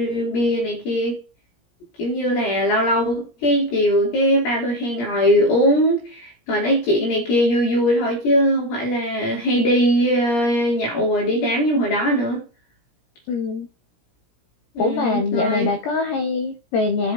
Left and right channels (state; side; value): late; right; 17 ms